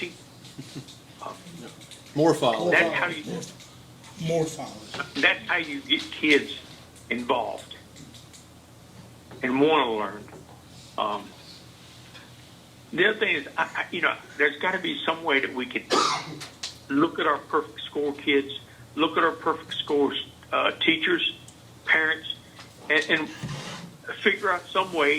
More followers. That's how you, More followers. that's how you get kids involved and want to learn. The other thing is, there's got to be some way that we can look at our perfect score kids, look at our perfect score teachers, parents, and figure out some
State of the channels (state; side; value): identical; both; correlation 1.00